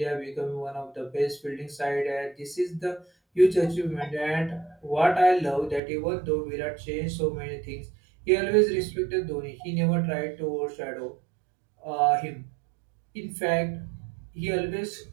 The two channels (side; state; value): left; drops out; at 5.8 s